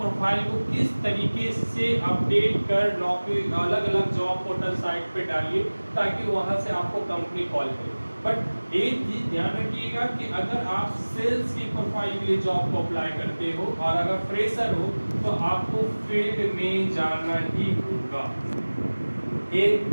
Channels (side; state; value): both; inverted; correlation -1.00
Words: को किस तरीके से अपडेट कर नौकरी अलग अलग जॉब पोर्टल साइट पे डालिए ताकि वहाँ से आपको कंपनी कॉल करे। बट एक चीज ध्यान रखिएगा कि अगर आप सेल्स की प्रोफाइल के लिए जॉब को अप्लाई करते हो और अगर फ्रेशर हो तो आपको फील्ड में जाना ही होगा। एक